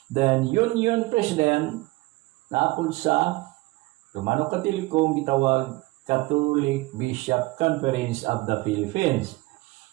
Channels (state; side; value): quieter; left; 21.1 dB